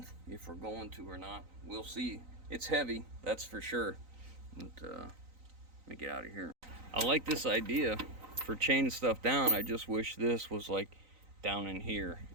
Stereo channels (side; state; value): left; late; 3.9 ms